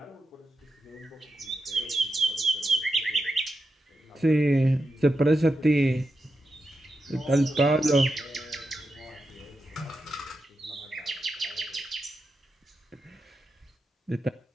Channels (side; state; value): both; normal; correlation 0.88